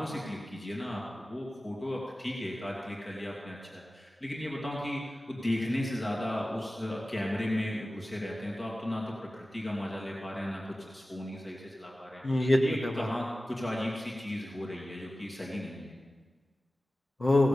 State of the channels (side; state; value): both; normal; correlation 0.96